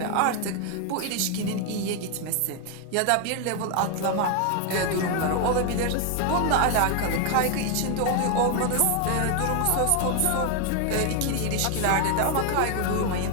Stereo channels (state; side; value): different; both; correlation 0.01